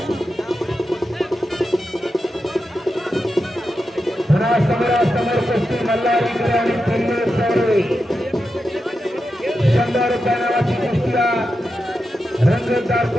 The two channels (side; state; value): both; normal; correlation 0.89